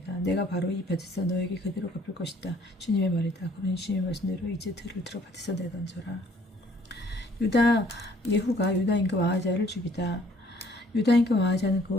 내가 바로 이 밭에서 너에게 그대로 갚을 것이다. 주님의 말이다. 그러니 주님의 말씀대로 이제 들을 들어 밭에서 내던져라. 예후가 유다 임금 아하지야를 죽이다. 유다 임금 아하지야는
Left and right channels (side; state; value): both; normal; correlation 0.60